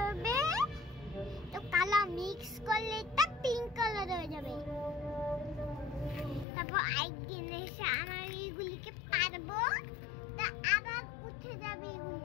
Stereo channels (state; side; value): drops out; right; at 6.5 s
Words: হবে, তো কালার মিক্স করলে এটা পিঙ্ক কালার হয়ে যাবে। তারপর একদিন এসে আমরা এইগুলিকে পারবো, তা আবার উঠে যাবে এগুলি।